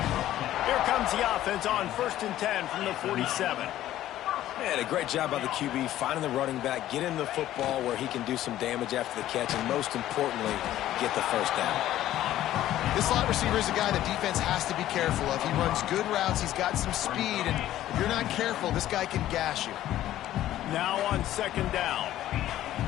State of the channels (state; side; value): quieter; right; 13.4 dB